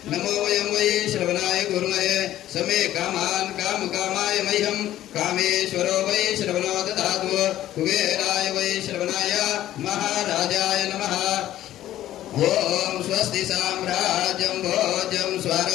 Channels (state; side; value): quieter; right; 13.3 dB